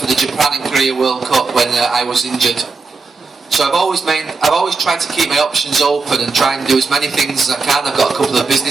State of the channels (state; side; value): quieter; left; 4.3 dB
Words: the Japan and Korea World Cup when I was injured. So I've always tried to keep my options open and try and do as many things as I can. I've got a couple of